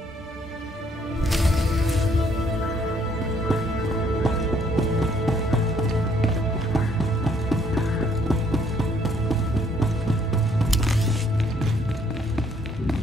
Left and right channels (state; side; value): normal; both; correlation 0.66